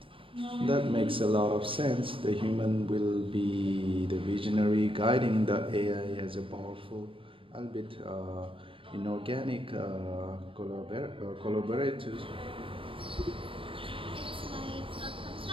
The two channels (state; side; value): late; left; 0.25 ms